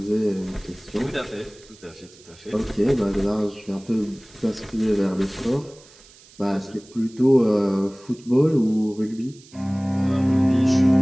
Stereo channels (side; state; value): right; noise; hiss, 24 dB below the sound